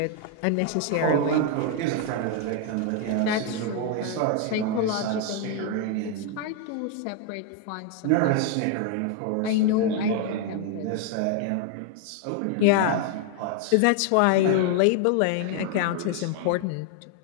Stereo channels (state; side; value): different; both; correlation 0.00